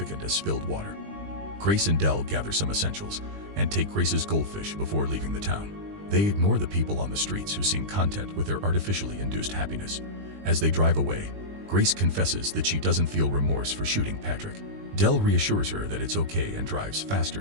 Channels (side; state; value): left; late; 20 ms